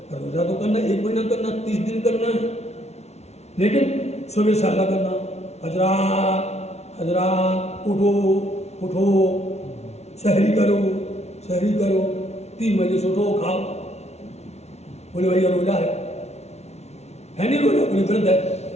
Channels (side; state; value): right; late; 0.31 ms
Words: रोजा तो करना 1 महीना करना, 30 दिन करना है, लेकिन सुबह साला करना, हजरात उठो उठो, सहरी करो, 3 बजे से उठो खाओ। बोले भैया रोजा है नहीं रोजा, बोले व्रत है।